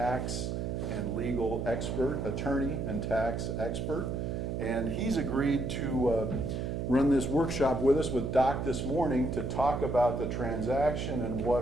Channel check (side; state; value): right; noise; hum, 2 dB below the sound